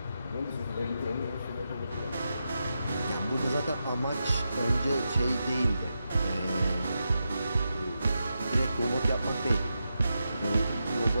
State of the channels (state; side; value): inverted; both; correlation -0.87